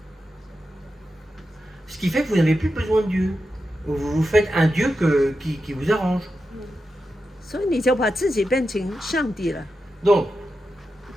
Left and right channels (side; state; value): both; normal; correlation 0.89